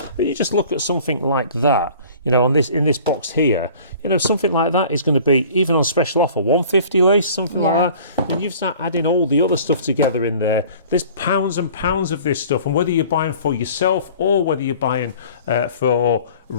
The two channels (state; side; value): inverted; both; correlation -0.47